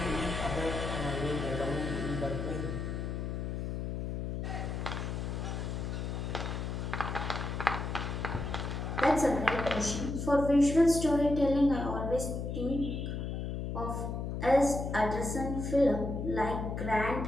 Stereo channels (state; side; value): noise; left; hum, 3 dB below the sound